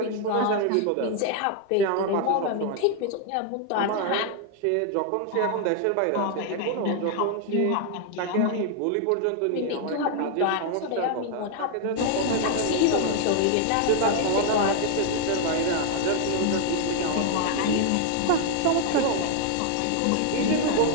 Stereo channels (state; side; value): different; both; correlation 0.00